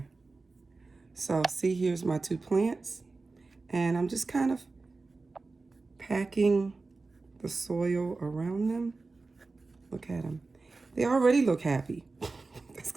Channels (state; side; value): quieter; left; 3.8 dB